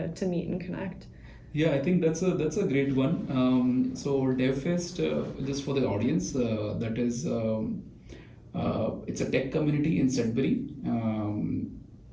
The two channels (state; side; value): identical; both; correlation 1.00